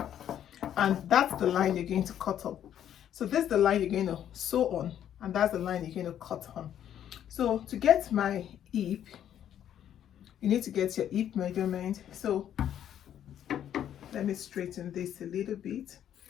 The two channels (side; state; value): right; quieter; 10.3 dB